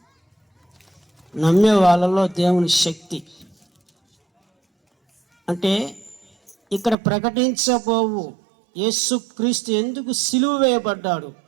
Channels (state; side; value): drops out; left; at 7.0 s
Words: నమ్మే వాళ్ళలో దేవుని శక్తి అంటే ఇక్కడ ప్రకటించబోవు యేసుక్రీస్తు ఎందుకు సిలువ వేయబడ్డాడు,